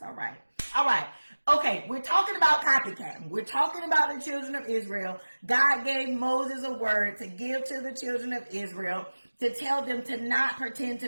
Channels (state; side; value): inverted; both; correlation -1.00